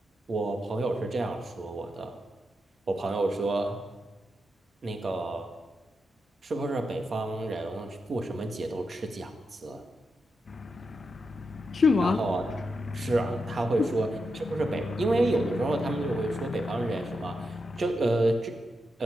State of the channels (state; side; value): normal; both; correlation 0.86